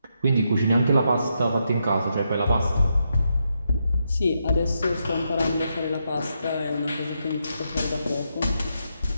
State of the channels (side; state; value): both; inverted; correlation -0.82